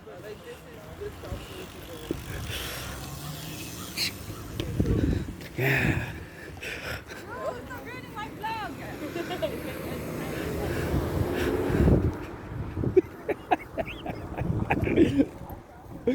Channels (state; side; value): identical; both; correlation 1.00